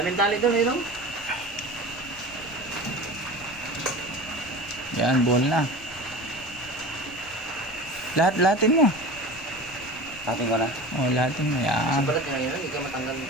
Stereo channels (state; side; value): noise; left; rumble, 21 dB below the sound